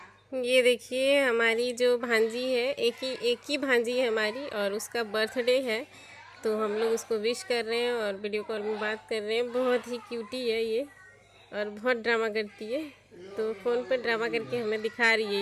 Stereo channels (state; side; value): identical; both; correlation 1.00